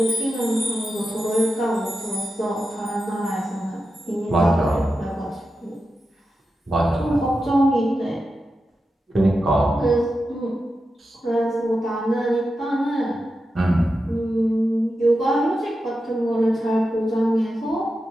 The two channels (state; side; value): normal; both; correlation 0.90